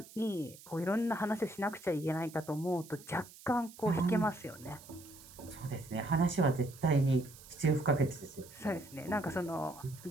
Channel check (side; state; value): right; noise; hiss, 19 dB below the sound